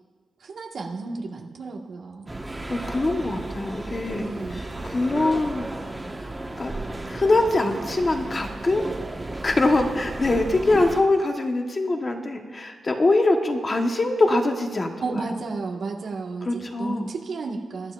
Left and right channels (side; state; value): both; normal; correlation 0.93